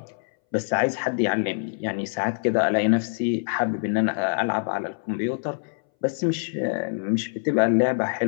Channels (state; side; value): silent; right; 61 dB below the other